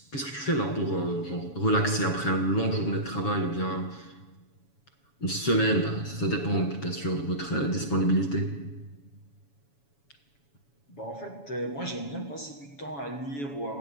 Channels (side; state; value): right; late; 7.1 ms